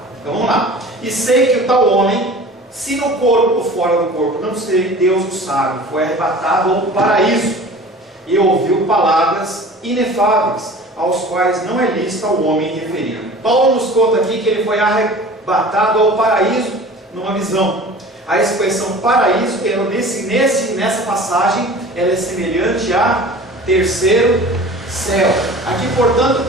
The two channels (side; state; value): both; normal; correlation 0.41